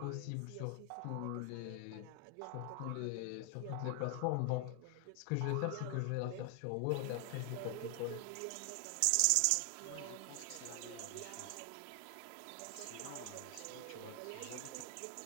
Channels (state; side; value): different; both; correlation 0.00